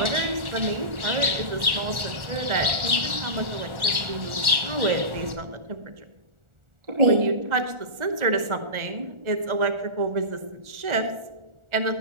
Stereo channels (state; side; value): late; left; 1.4 ms